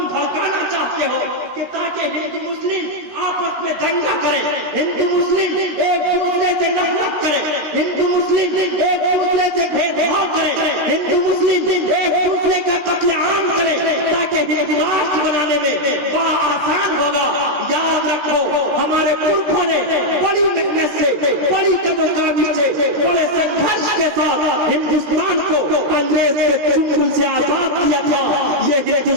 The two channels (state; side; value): late; left; 16 ms